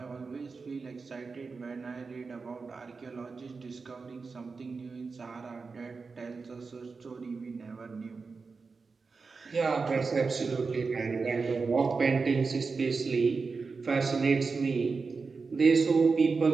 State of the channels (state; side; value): quieter; left; 4.6 dB